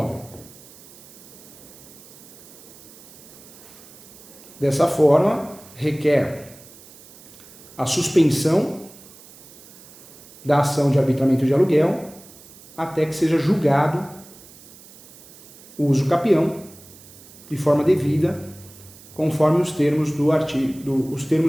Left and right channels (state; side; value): noise; right; hiss, 21 dB below the sound